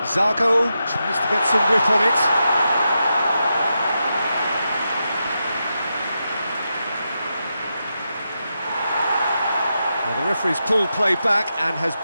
Zago tries to get some whip on it. Well, the referee's pulled play back and has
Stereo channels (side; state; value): both; inverted; correlation -0.87